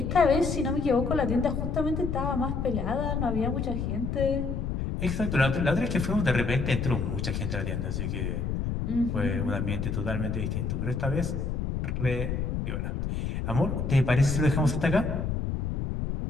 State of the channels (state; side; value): noise; left; rumble, 2 dB below the sound